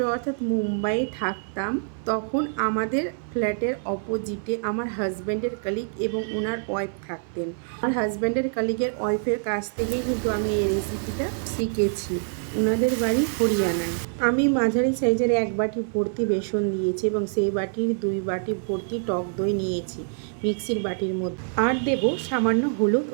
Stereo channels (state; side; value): silent; left; 58 dB below the other